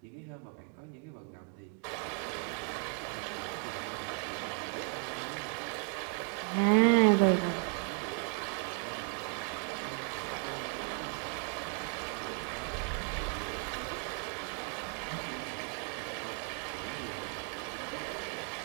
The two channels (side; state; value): left; quieter; 38.0 dB